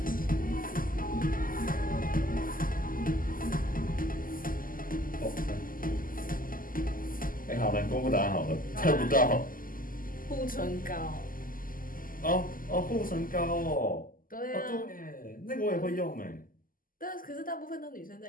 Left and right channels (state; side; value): late; right; 0.41 ms